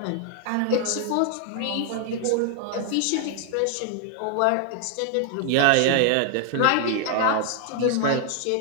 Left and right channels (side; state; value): both; different; correlation 0.00